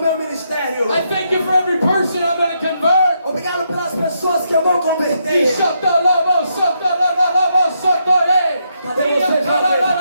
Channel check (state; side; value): inverted; both; correlation -0.79